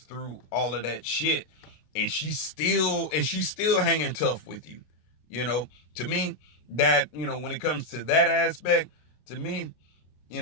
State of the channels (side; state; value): right; late; 33 ms